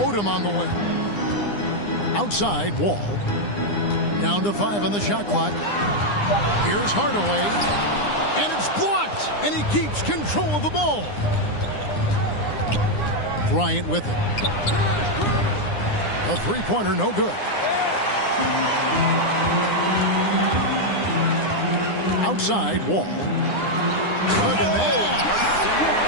Odom on the wing. Outside, Wall. Down to 5 on the shot clock. Here's Hardaway. And it's blocked. And he keeps control of the ball. Bryant with it. The three-pointer, no good. Outside, Wall. Look at that.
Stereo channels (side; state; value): right; late; 9.8 ms